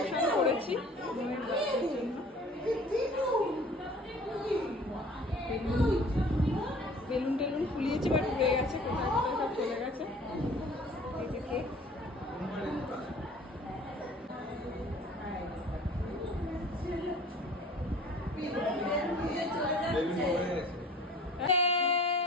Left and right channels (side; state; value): both; normal; correlation 0.48